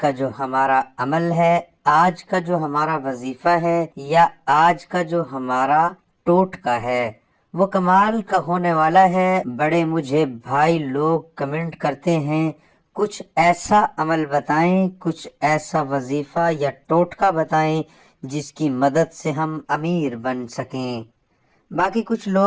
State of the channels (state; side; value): identical; both; correlation 1.00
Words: جو ہمارا عمل ہے، آج کا جو ہمارا وظیفہ ہے یا آج کا جو ہمارا ٹوٹکا ہے وہ کمال کا ہونے والا ہے۔ بڑے مجھے بھائی لوگ کمنٹ کرتے ہیں کچھ ایسا عمل بتائیں، کچھ ایسا وظیفہ یا ٹوٹکا بتائیں جس کی مدد سے ہم امیر بن سکیں۔ باقی کچھ